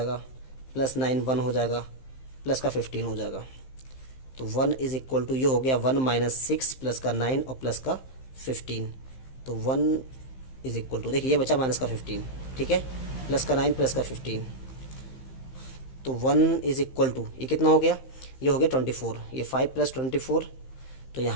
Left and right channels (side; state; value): right; late; 15 ms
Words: प्लस 9 1 हो जाएगा प्लस का 15 हो जाएगा। तो 1 इज इक्वल टू ये हो गया 1 माइनस 6 प्लस का 9 और प्लस का 15। तो 1 इज इक्वल टू देखिए ये बचा माइनस का 15। ठीक है, प्लस का 9 प्लस का 15। तो 1 इज इक्वल टू ये कितना हो गया, ये हो गया 24। ये 5 प्लस 24, तो